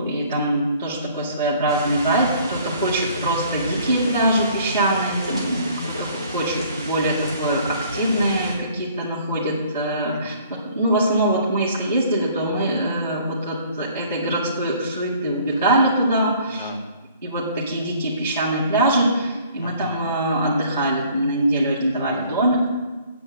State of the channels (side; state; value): both; inverted; correlation -0.56